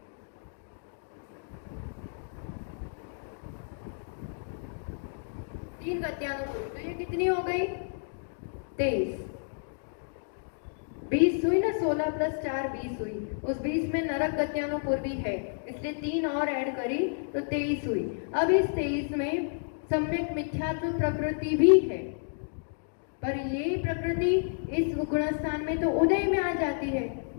3 गत्यानुपूर्वी, तो ये कितनी हो गई 23। 20 हुई ना, 16 प्लस 4 20 हुई। उस 20 में नरक गत्यानुपूर्वी है, इसलिए 3 और ऐड करी तो 23 हुई। अब इस 23 में सम्यक मिथ्यात्व प्रकृति भी है, पर ये प्रकृति इस गुणस्थान में तो उदय में आ जाती है,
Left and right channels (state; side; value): silent; right; digital silence